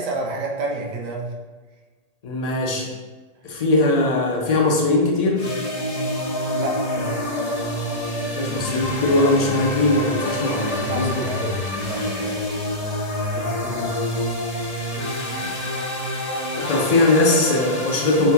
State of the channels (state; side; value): late; left; 1.8 ms